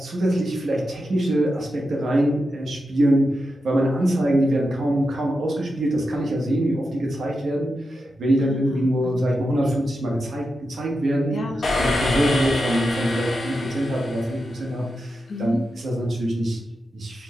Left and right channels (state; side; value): normal; both; correlation 0.89